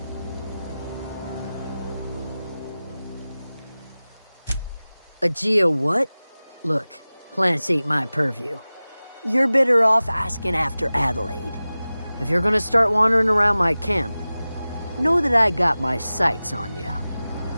A geo what? Look, plants ain't my purview. You're better off asking after Adelaide. If you're gonna start wandering around my camp, know that I got my sights on you.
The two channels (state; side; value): inverted; both; correlation -0.97